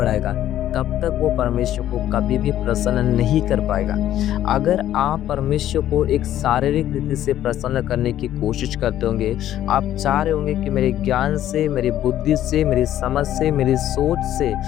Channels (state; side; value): quieter; right; 12.2 dB